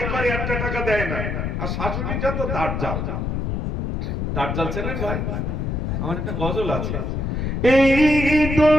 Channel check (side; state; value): left; noise; rumble, 1 dB below the sound